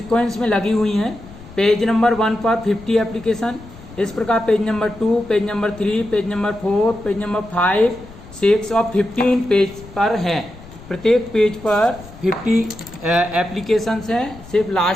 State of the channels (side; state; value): left; noise; rumble, 18 dB below the sound